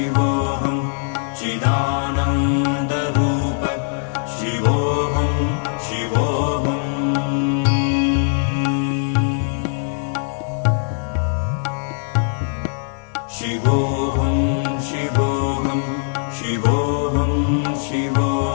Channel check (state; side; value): silent; right; digital silence